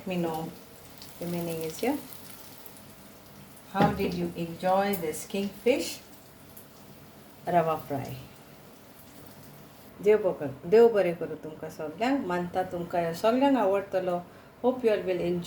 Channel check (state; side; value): identical; both; correlation 1.00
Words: me know, remaining is here. How did you enjoy this kingfish rava fry? देव बरें करूं तुमकां सगळ्यांक. मानता तुमकां ह्यो सगळ्यांक आवडटलो. Hope you all will